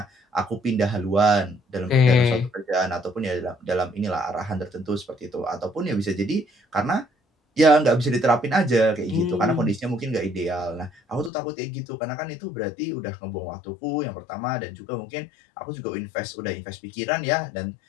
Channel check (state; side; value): drops out; right; at 11.3 s